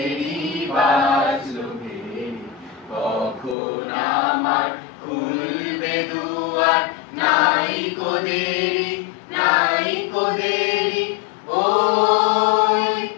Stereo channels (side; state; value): right; drops out; at 3.6 s